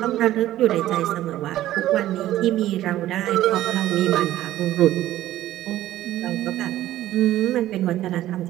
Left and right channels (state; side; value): quieter; left; 14.1 dB